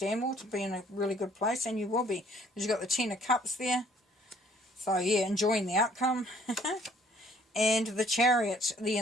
more, to be in a really good place, and you will be, because you've got the Ten of Cups there. So yeah, enjoying the outcome. And the Chariot, the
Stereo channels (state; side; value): normal; both; correlation 0.60